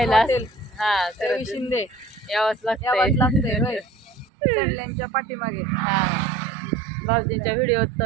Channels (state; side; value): drops out; left; at 4.2 s